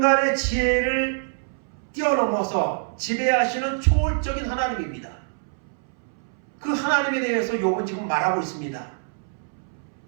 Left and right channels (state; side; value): silent; left; 62 dB below the other